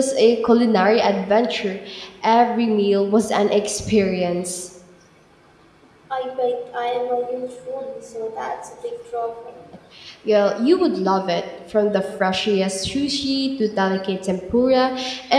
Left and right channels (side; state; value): both; identical; correlation 1.00